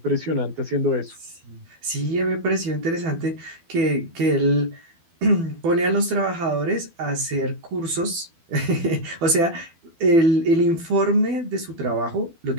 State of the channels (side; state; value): left; late; 12 ms